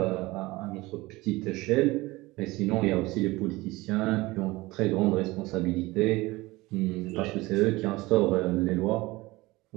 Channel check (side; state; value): left; quieter; 20.7 dB